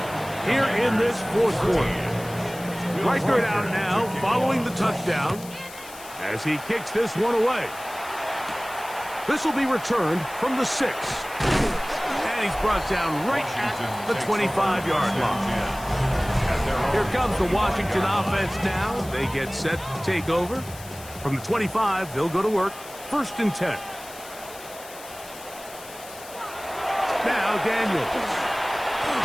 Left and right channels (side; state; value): left; noise; hiss, 17 dB below the sound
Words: here in this 4th quarter. Reichert out now following the touchdown as he kicks this one away. This will be returned from the 6. And he's brought down right at the 25-yard line. Here comes the Washington offense now. They get set to take over. From the 25, they'll go to work. 1st and 10. Now Daniels.